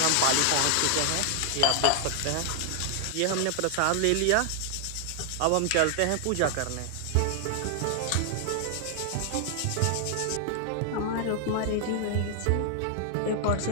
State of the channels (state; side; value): different; both; correlation 0.00